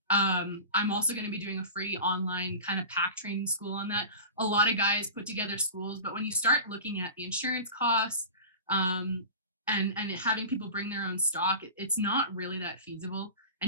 I'm also going to be doing a free online kind of pack training school on that. A lot of guys put together schools, but when you start looking at the insurance costs, and having people bring their own stock, it's not really that feasible,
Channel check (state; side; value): inverted; both; correlation -0.33